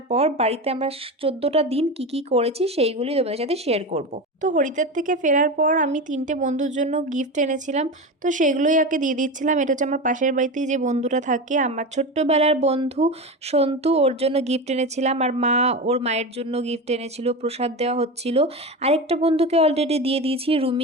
পর বাড়িতে আমরা 14টা দিন কি কি করেছি সেইগুলি তোমাদের সাথে শেয়ার করব। তো হরিদ্বার থেকে ফেরার পর আমি 3টে বন্ধুর জন্য গিফট এনেছিলাম, তো সেগুলোই আগে দিয়ে দিচ্ছিলাম। এটা হচ্ছে আমার পাশের বাড়িতেই যে বন্ধুরা থাকে, আমার ছোট্টবেলার বন্ধু সন্তু, ওর জন্য গিফট এনেছিলাম। আর মা ওর মায়ের জন্য গিফট এনেছিল, প্রসাদ দেওয়া হচ্ছিল। আরেকটা বন্ধুকে অলরেডি দিয়ে দিয়েছি,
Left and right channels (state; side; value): normal; both; correlation 0.23